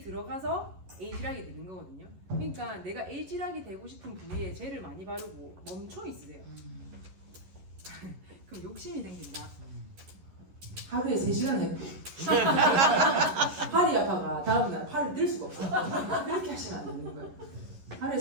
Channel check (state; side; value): late; left; 11 ms